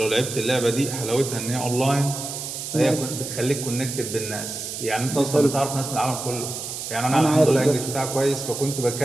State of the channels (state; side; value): noise; right; hiss, 7 dB below the sound